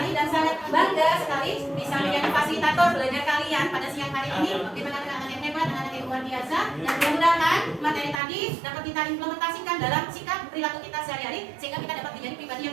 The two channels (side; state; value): left; drops out; at 8.2 s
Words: dan sangat bangga sekali bisa menjadi fasilitator belajar kalian pada siang hari ini di tengah-tengah anak yang hebat, anak yang luar biasa. Dan mudah-mudahan materi tadi dapat kita implementasikan dalam sikap perilaku kita sehari-hari sehingga kita dapat menjadi pribadi